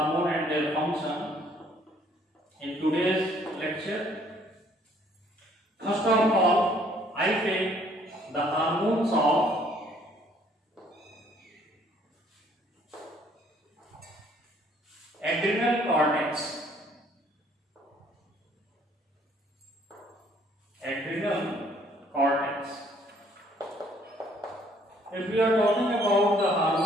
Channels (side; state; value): both; normal; correlation 0.62